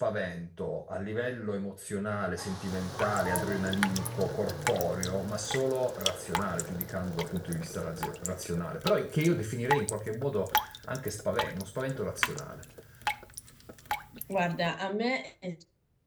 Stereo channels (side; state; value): both; identical; correlation 1.00